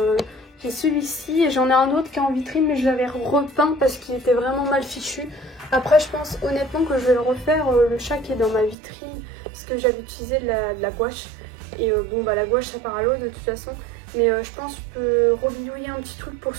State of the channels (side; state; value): left; drops out; at 8.8 s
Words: J'ai celui-ci et j'en ai un autre qui est en vitrine mais je l'avais repeint parce qu'il était vraiment mal fichu. Après je pense honnêtement que je vais le refaire, le chat qui est dans ma vitrine parce que j'avais utilisé de la gouache. Et bon bah la gouache ça part à l'eau de toute façon. Mais je pense que je peux rebidouiller un petit truc pour